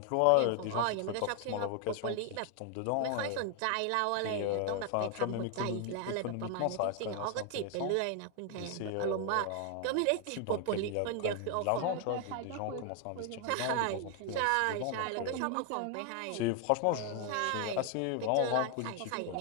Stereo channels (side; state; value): both; different; correlation 0.01